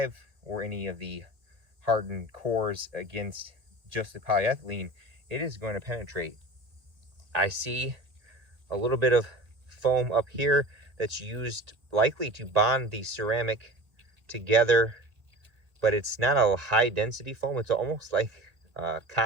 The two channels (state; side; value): late; left; 1.9 ms